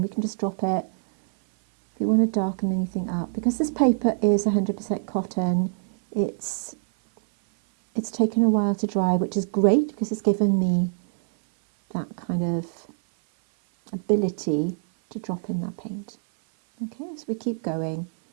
we can just drop it. If you want to darken anything up, because this paper is 100% cotton, it's taken a while to dry, which is great because it's given me that kind of ability to drop in that paint. Okay, so we keep going.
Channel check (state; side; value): silent; left; 58 dB below the other